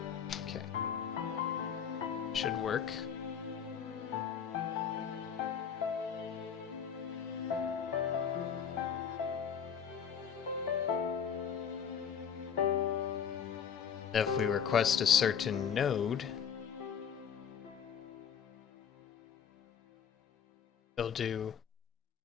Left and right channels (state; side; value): quieter; right; 7.5 dB